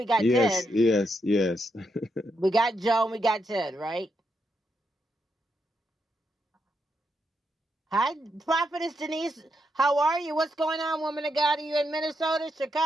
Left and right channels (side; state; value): both; normal; correlation 0.81